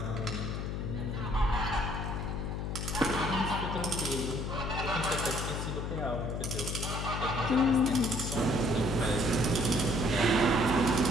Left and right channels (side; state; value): left; noise; hum, 3 dB below the sound